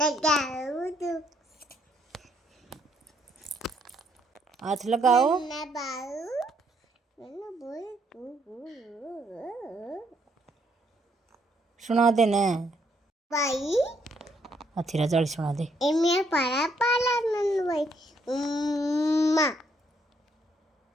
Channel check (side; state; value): both; normal; correlation 0.71